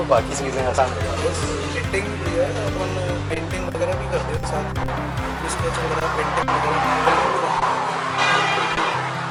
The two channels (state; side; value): identical; both; correlation 1.00